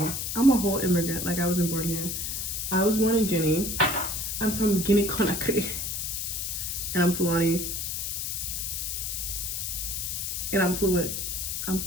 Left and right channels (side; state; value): left; noise; hiss, 2 dB below the sound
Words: I'm a whole immigrant. Like, I wasn't born here. I was born in Guinea. I'm from Guinea-Conakry. And I'm Fulani. And I'm fluent. I'm